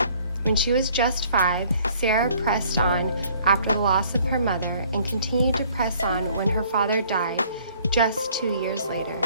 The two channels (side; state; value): both; inverted; correlation -0.58